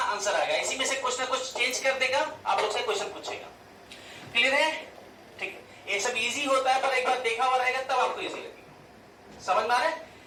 आ गया। इसी में से कुछ ना कुछ चेंज कर देगा, आप लोग से क्वेश्चन पूछेगा। क्लियर है, ठीक है। ये सब इजी होता है, पर एक बार देखा हुआ रहेगा तब आपको इजी लगेगा, समझ में आ रहा है।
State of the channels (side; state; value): both; identical; correlation 1.00